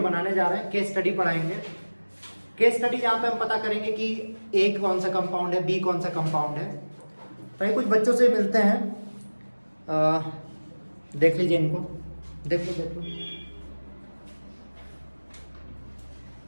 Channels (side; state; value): both; inverted; correlation -1.00